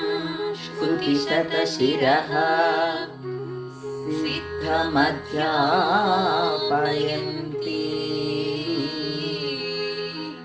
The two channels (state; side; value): identical; both; correlation 1.00